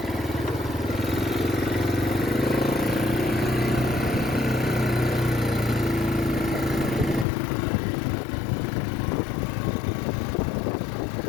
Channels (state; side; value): drops out; right; at 7.2 s